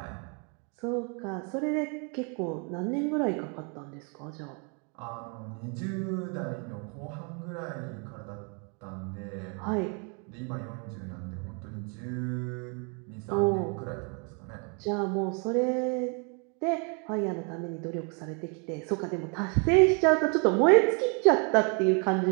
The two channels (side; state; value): left; quieter; 36.7 dB